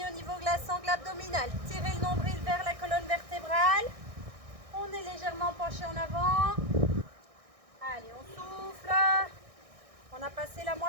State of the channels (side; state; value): left; late; 1.6 ms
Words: au niveau de la sangle abdominale. Tirez le nombril vers la colonne vertébrale. On est légèrement penché en avant. Allez, on souffle. On a passé la